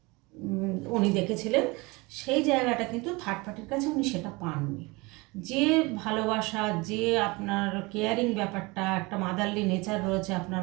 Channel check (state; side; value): quieter; left; 25.0 dB